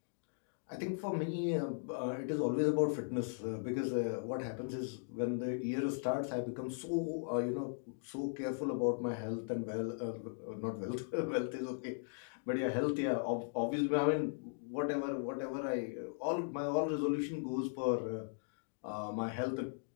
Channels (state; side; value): silent; right; digital silence